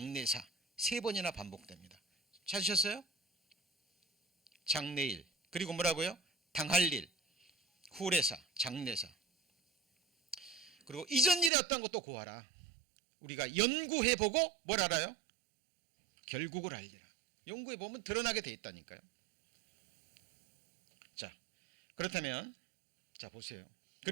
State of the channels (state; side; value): drops out; left; at 11.5 s